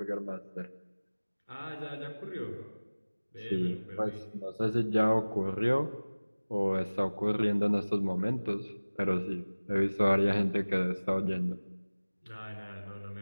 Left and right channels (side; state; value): both; inverted; correlation -1.00